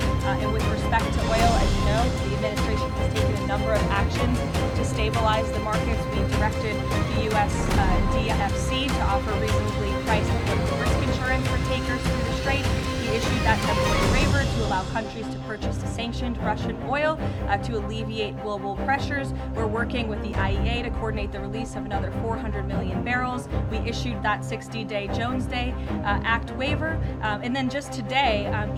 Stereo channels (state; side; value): identical; both; correlation 1.00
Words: And with respect to oil, as you know, the administration has taken a number of actions to stabilize the markets. We directed the U.S. DFC to offer reasonably priced political risk insurance for tankers through the strait. We issued that temporary waiver to allow countries to purchase sanctioned Russian oil to alleviate global pressures. We're working with the IEA to coordinate the release of another 400 million barrels. We issued that 60-day Jones Day Act waiver. And then just today,